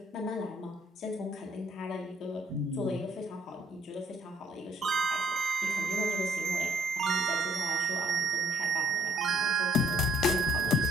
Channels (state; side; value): normal; both; correlation 0.64